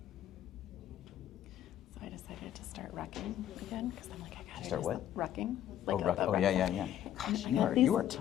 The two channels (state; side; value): quieter; right; 11.2 dB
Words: So I decided to start wrecking again because I'm like, I gotta Start do what? some wrecking. Oh, Like oh yeah, yeah, yeah. And Gosh, I got you are these-